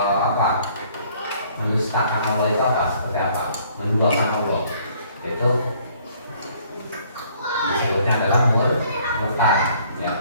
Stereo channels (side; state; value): both; inverted; correlation -0.60